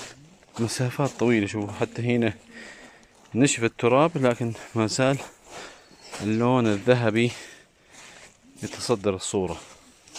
مسافات طويلة. شوفوا حتى هنا نشف التراب لكن ما زال اللون الذهبي يتصدر الصورة.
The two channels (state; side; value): identical; both; correlation 1.00